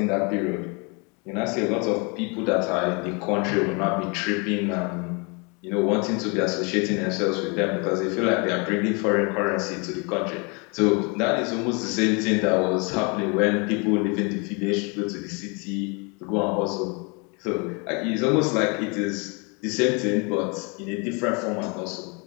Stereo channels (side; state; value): right; quieter; 31.8 dB